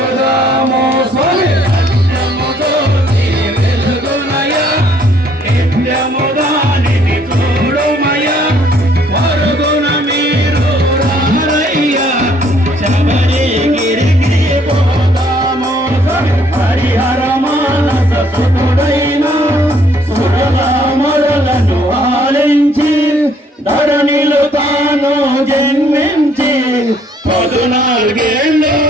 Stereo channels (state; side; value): normal; both; correlation 0.64